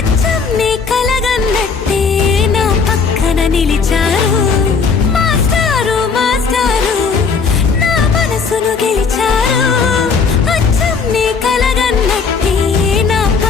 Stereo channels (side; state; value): right; quieter; 5.3 dB